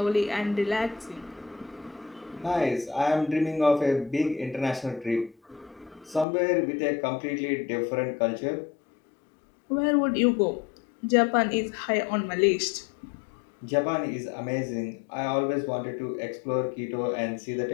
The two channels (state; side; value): drops out; right; at 6.2 s